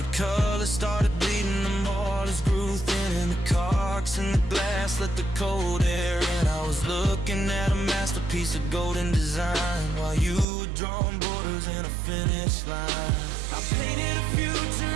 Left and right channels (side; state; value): left; drops out; at 10.5 s